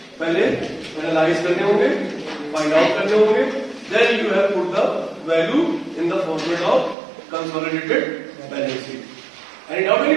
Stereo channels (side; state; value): left; drops out; at 7.0 s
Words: पहले एनालाइज करने होंगे, फाइंड आउट करने होंगे, then you have put the value in the format of consolidated balance sheet. Any doubt